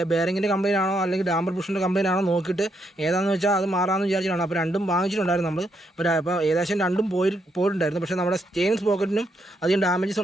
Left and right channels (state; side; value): normal; both; correlation 0.77